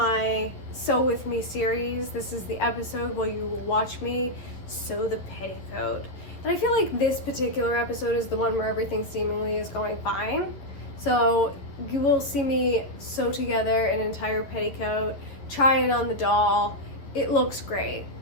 Sew With Me series. This is the episode where you will watch me sew the petticoat. And I feel like this particular episode is the one where everything seemingly is going fine. So you will see me sew together an entire petticoat, try it on the doll. It looks great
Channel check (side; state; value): right; late; 11 ms